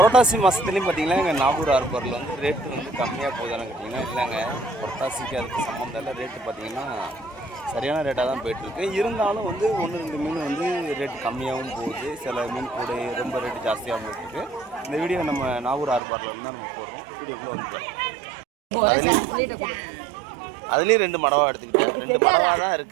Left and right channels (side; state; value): left; drops out; at 16.0 s